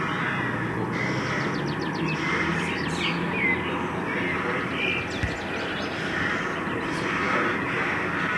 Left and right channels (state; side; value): identical; both; correlation 1.00